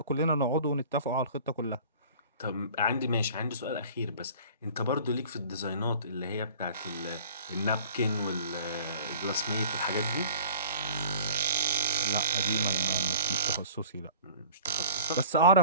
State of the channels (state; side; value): inverted; both; correlation -0.46